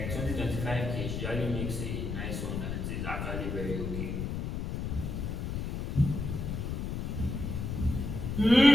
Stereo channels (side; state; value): left; noise; rumble, 3 dB below the sound